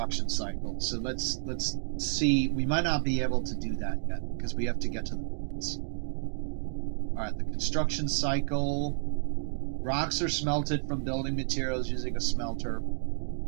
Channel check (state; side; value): silent; left; digital silence